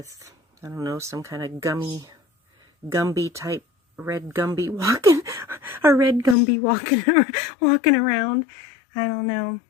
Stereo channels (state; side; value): drops out; right; at 6.4 s